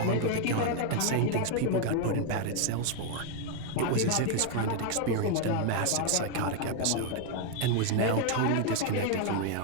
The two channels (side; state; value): both; different; correlation 0.01